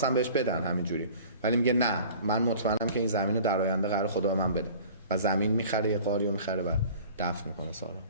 بهش بدن همینجوری، ولی میگه نه، من مطمئنم که این زمین رو در آینده قرار خدا به من بده و زمین میخره، یه قاری رو میخره و دفن میکنه سارا.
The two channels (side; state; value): both; inverted; correlation -0.45